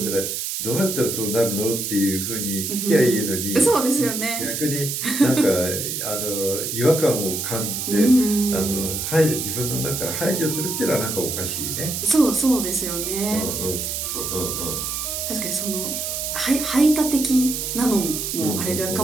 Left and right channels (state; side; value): noise; right; hiss, 3 dB below the sound